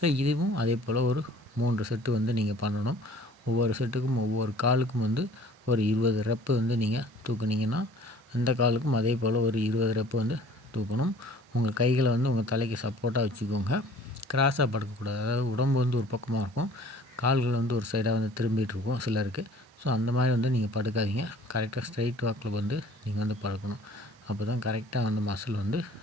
இதுவும் அதே போல் ஒரு 3 செட்டு வந்து நீங்கள் பண்ணணும். ஒவ்வொரு செட்டுக்கும் ஒவ்வொரு காலுக்கும் வந்து ஒரு 20 ரெப்பு வந்து நீங்கள் தூக்குனீங்கன்னா, அந்த காலுக்கும் அதே போல் ஒரு 20 ரெப்பு வந்து தூக்கணும். உங்கள் கைகளை வந்து உங்கள் தலைக்கு சப்போர்ட்டாக வச்சுக்கோங்க. கிராஸாக படுக்கக்கூடாது. அதாவது உடம்பு வந்து ஒரு பக்கமாக இருக்கும், கால்கள் வந்து ஒரு சைடாக வந்து திரும்பிகிட்டு இருக்கும் சிலருக்கு. ஸோ அந்த மாதிரி வந்து நீங்கள் படுக்காதீங்க. கரெக்டாக ஸ்ட்ரைட் வாக்கில் வந்து நீங்கள் வந்து படுக்கணும். அப்போ தான் கரெக்டாக வந்து மசில் வந்து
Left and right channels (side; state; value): both; normal; correlation 0.51